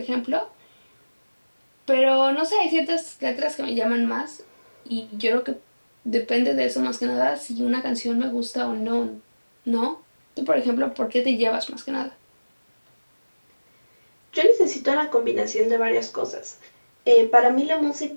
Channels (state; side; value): inverted; both; correlation -1.00